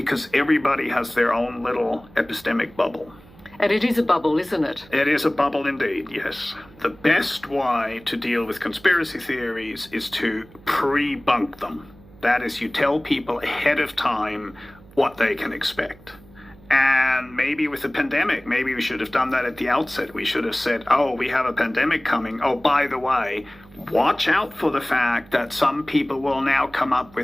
everybody has their own little epistemic bubble. And it is a bubble, isn't it? It is a bubble indeed, yes. The best way to deal with conspiracy theories is to pre-bunk them. That is, you tell people ahead of time what they can expect. And maybe with the pandemic, maybe we should have done that at the outset. We should have said, oh, we have a pandemic coming. Oh, by the way, watch out for the fact that some people will now come up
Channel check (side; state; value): right; noise; hum, 24 dB below the sound